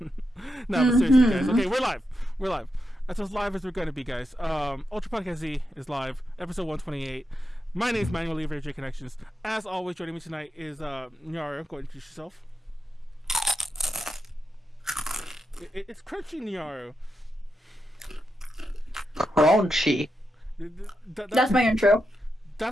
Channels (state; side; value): normal; both; correlation 0.86